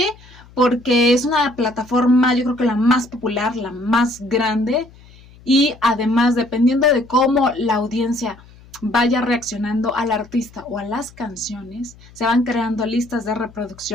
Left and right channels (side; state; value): left; noise; hum, 24 dB below the sound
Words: Porque es una plataforma, yo creo que la más popular, la más grande, y además, dependiendo de cómo la audiencia vaya reaccionando al artista o a las canciones, se van creando listas de